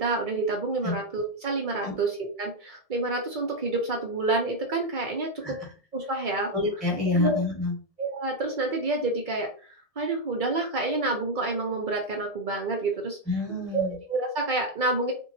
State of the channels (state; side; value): late; right; 1.7 ms